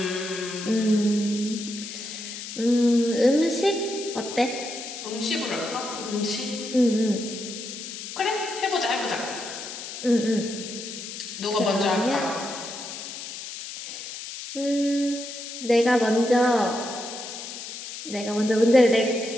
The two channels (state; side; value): noise; left; hiss, 9 dB below the sound